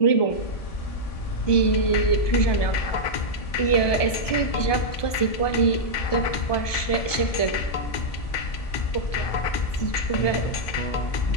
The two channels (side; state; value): right; late; 1.2 ms